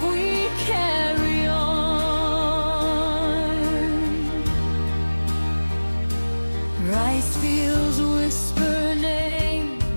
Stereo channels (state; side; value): inverted; both; correlation -1.00